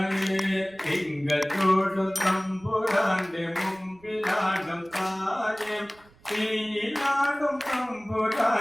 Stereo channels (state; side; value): noise; right; rumble, 29 dB below the sound